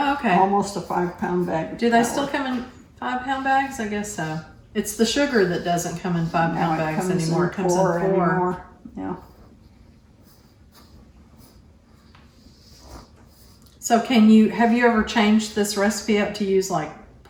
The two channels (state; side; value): identical; both; correlation 1.00